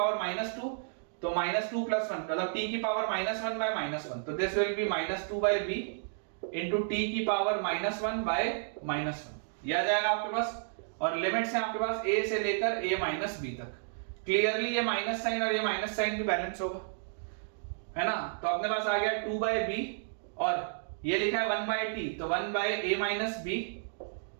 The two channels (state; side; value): silent; left; digital silence